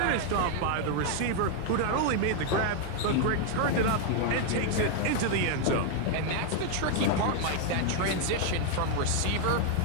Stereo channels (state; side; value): different; both; correlation 0.01